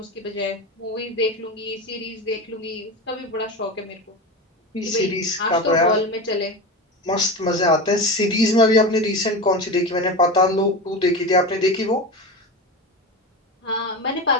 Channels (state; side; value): normal; both; correlation 0.24